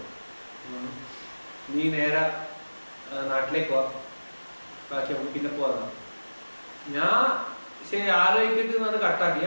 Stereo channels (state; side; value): inverted; both; correlation -1.00